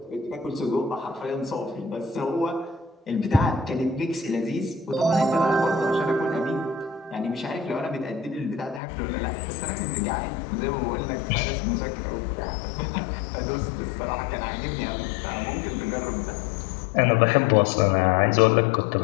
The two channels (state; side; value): drops out; right; at 8.8 s